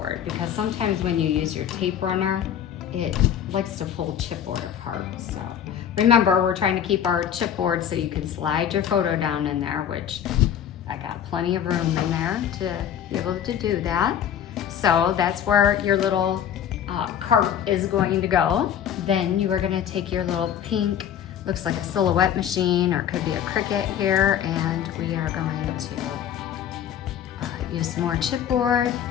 because sometimes when you use your tape runner, it likes to pull chipboard apart. So remember, we're trying to keep our chipboard so you can slide your photo down in there, which I got plenty of room in there to be able to do that. So that's where your little cart is going to go. Then you are gonna take your little pink, looks like a silhouette machine or it could be a Cricut here, and we are going to use some more chipboard.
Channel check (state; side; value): quieter; right; 9.5 dB